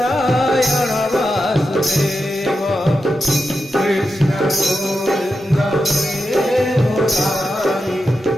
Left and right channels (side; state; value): both; normal; correlation 0.89